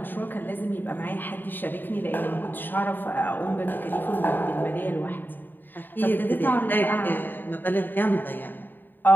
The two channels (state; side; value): late; right; 0.092 ms